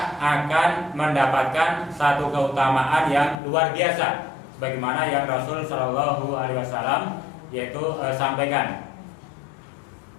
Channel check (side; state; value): right; drops out; at 3.4 s